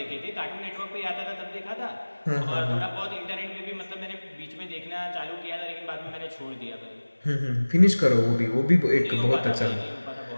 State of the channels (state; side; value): inverted; both; correlation -1.00